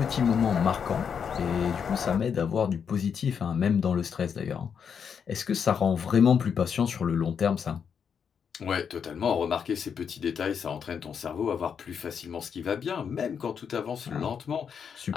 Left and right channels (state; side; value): quieter; right; 7.0 dB